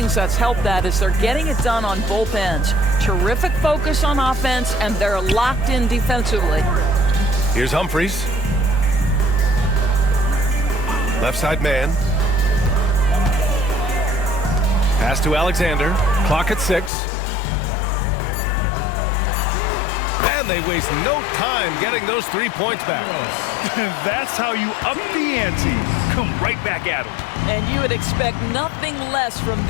that's helped that is they're getting it done on both ends. Terrific focus on offense, and they're locked in defensively. Here's Humphries. Left side man. Pass to Alexander. Clock at 6. And they waste no time getting those 3 points back. That's how you up the ante. Come right back at them. And you would expect nothing less from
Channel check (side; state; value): right; drops out; at 16.9 s